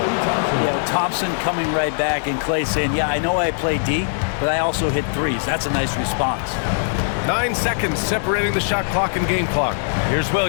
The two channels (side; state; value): right; silent; 57 dB below the other